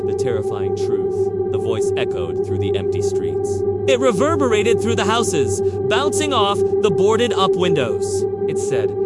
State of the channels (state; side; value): identical; both; correlation 1.00